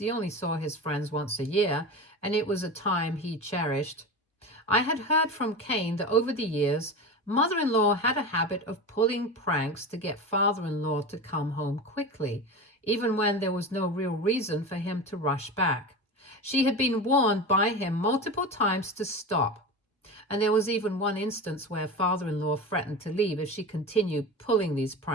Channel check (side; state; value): both; normal; correlation 0.27